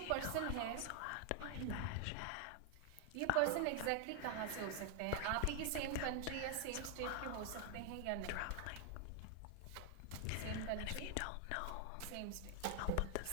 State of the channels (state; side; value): different; both; correlation 0.00